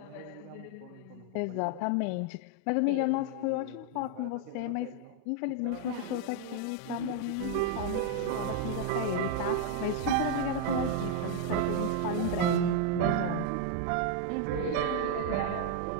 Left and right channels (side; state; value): both; different; correlation 0.00